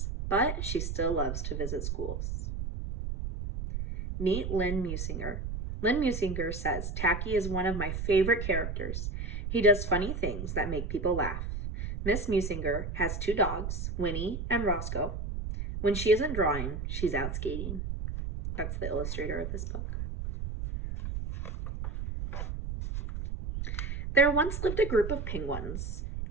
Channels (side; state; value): right; noise; rumble, 4 dB below the sound